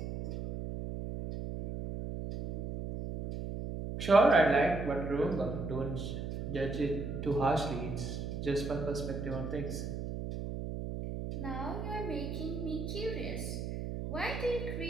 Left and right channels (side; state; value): right; noise; hum, 5 dB below the sound